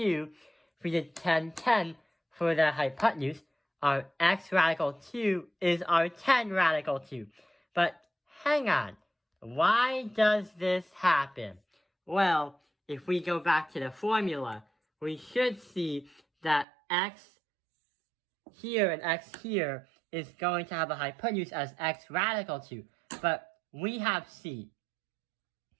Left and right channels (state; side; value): drops out; left; at 16.7 s